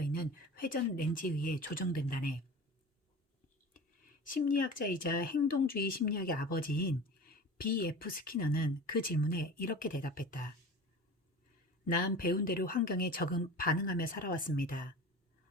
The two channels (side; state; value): both; normal; correlation 0.36